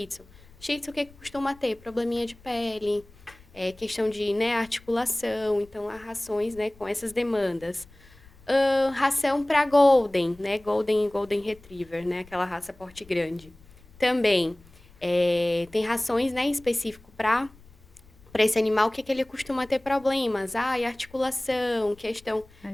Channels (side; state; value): left; noise; rumble, 25 dB below the sound